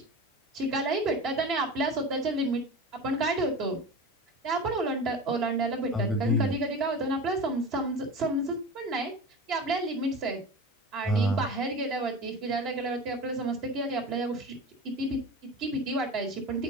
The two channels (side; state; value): both; normal; correlation 0.31